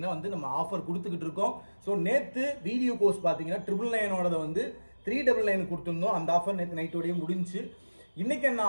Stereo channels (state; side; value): inverted; both; correlation -1.00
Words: வந்து நம்ம ஆஃபர் கொடுத்துக்கிட்டு இருக்கோம். ஸோ நேத்து வீடியோ கோர்ஸ் பாத்தீங்கன்னா 999 வந்து 399 கொடுத்துருந்தோம். அந்த ஆஃபர் நேற்று நைட்டோடய முடிஞ்சு. இன்னைக்கு என்ன